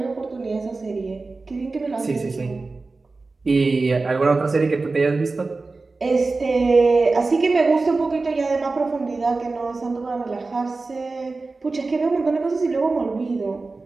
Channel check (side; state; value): left; quieter; 3.7 dB